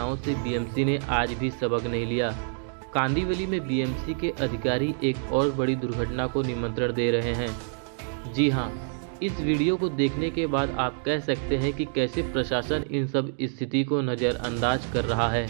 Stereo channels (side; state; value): left; silent; digital silence